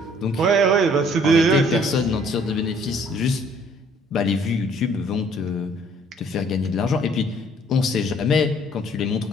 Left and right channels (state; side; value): normal; both; correlation 0.59